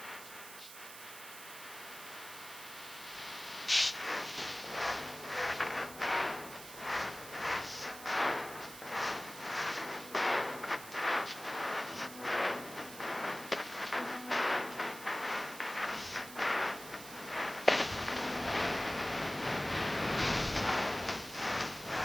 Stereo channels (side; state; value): right; noise; hiss, 13 dB below the sound